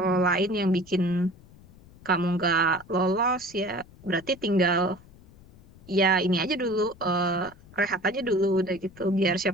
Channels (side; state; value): left; noise; rumble, 23 dB below the sound